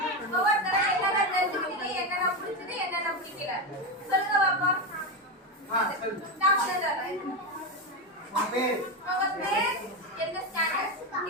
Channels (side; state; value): both; normal; correlation 0.12